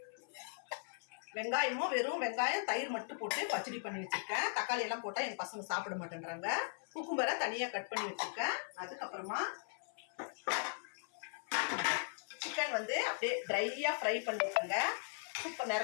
வெங்காயமும் வெறும் வெங்காயம் தயிர் மட்டும் போட்டு பச்சடி பண்ணி வச்சிருக்கேன். தக்காளி எல்லாம் போட்டால் எங்கள் பசங்க சாப்பிட மாட்டேன்றாங்க. குக்கும்பரை தனியாக கட் பண்ணி வச்சிருக்கேன். அதுக்கப்புறமா சிக்கன் அப்படியே ட்ரையாக ஃப்ரை பண்ணியிருக்கேங்க. சூப்பர்.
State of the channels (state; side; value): silent; right; 52 dB below the other